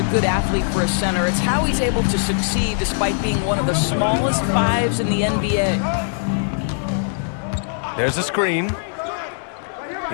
good athlete for a center. It's how he's able to succeed despite being one of the smallest fives in the NBA. There's a screen.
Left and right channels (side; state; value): right; silent; digital silence